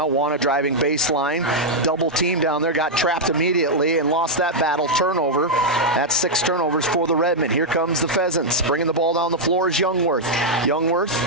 Wana driving baseline. Double team down there. Got trapped immediately and lost that battle. Turnover. That's 6 turnovers for the Redmen. Here comes the Pheasants. Bringing the ball down the floor is Youngworth. Youngworth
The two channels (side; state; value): both; normal; correlation -0.04